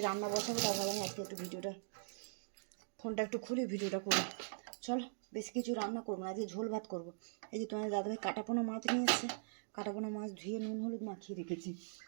রান্না বসাবো, তাও ভাবলাম আজকে একটু ভিডিওটা, ফোনটা একটু খুলি ভিডিওটা করবো। চলো, বেশি কিছু রান্না করবো না, আজকে ঝোল ভাত করবো। এই যে তোমাদের দাদাভাই কাটাপোনা মাছ নিয়ে এসছে, কাটাপোনা মাছ ধুয়ে নুন হলুদ মাখিয়ে রেখেছি।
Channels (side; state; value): left; silent; digital silence